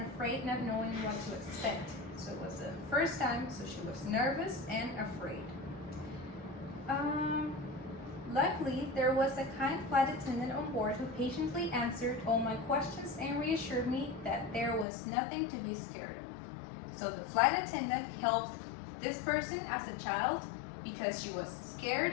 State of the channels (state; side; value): drops out; right; at 14.9 s